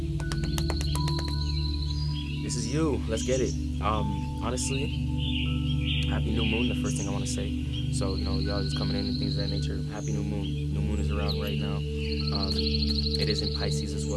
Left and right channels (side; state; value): both; identical; correlation 1.00